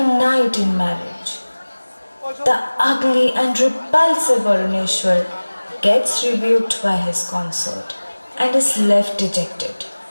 in marriage. The ugly and repulsive Varuneshwar gets rebuked by his consort and is left dejected.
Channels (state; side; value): inverted; both; correlation -1.00